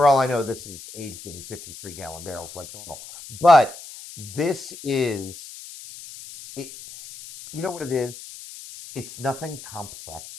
all I know, this is aged in 53-gallon barrels like normal. But this is, it. You know what it is? It's nothing complex,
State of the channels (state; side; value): noise; left; hiss, 15 dB below the sound